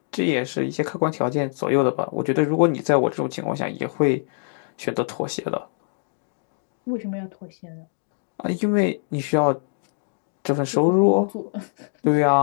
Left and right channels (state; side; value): silent; right; digital silence